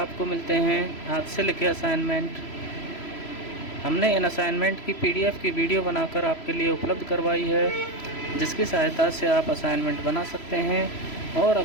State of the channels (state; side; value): late; right; 3.0 ms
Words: मिलते हैं हाथ से लिखे असाइनमेंट। हमने इन असाइनमेंट की PDF की वीडियो बनाकर आपके लिए उपलब्ध करवाई है, जिसकी सहायता से आप असाइनमेंट बना सकते हैं। और